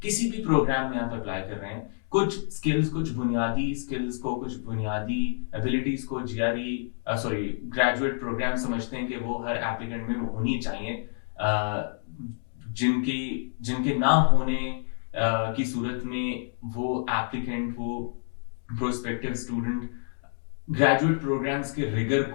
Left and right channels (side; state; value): right; silent; digital silence